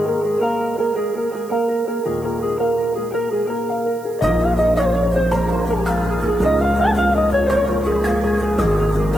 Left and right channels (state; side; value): noise; right; hiss, 23 dB below the sound